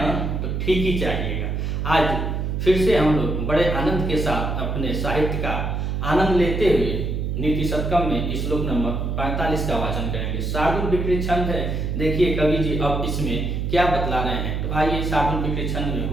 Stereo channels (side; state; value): right; noise; hum, 1 dB below the sound